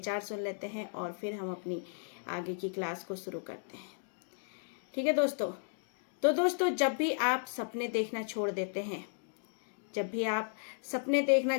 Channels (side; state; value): right; silent; digital silence